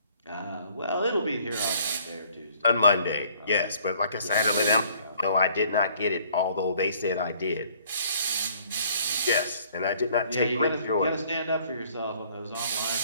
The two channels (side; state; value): both; inverted; correlation -0.59